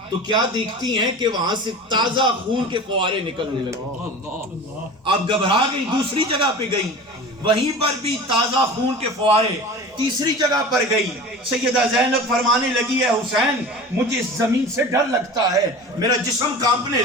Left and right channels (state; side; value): normal; both; correlation 0.35